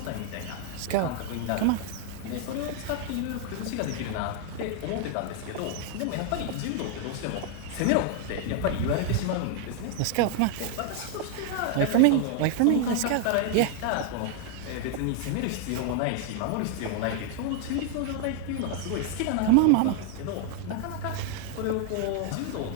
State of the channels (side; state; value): both; different; correlation 0.00